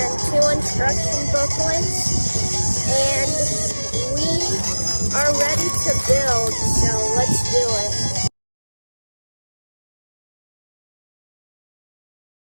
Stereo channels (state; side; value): inverted; both; correlation -1.00